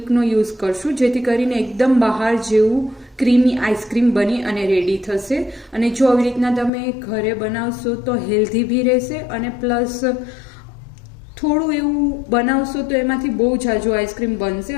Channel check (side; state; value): right; drops out; at 6.7 s